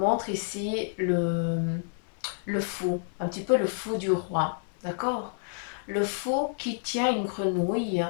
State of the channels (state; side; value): silent; right; 59 dB below the other